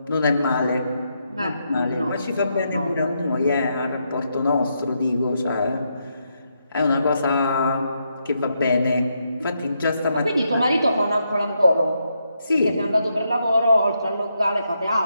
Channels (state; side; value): inverted; both; correlation -0.80